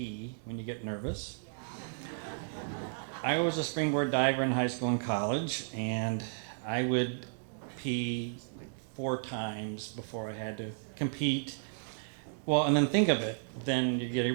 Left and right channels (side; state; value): left; silent; digital silence